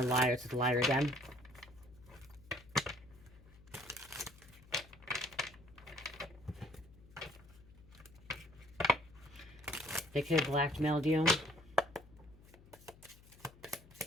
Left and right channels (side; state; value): left; noise; hum, 23 dB below the sound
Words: liars. It's a liar again. They could have blackmailed you.